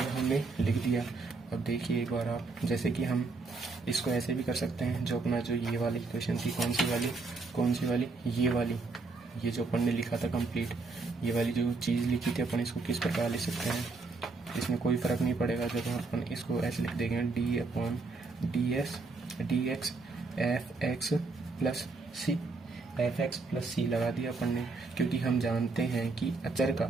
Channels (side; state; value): left; quieter; 3.8 dB